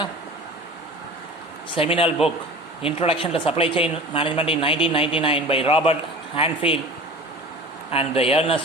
seminal book Introduction to Supply Chain Management in 1999 by Robert Hanfield and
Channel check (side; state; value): both; normal; correlation 0.38